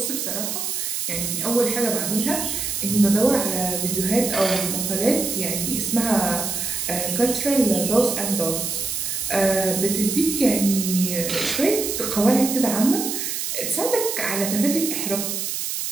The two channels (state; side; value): noise; right; hiss, 3 dB below the sound